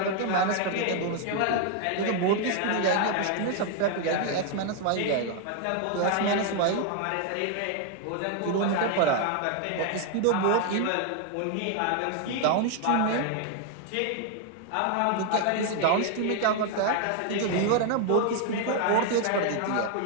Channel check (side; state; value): both; different; correlation 0.00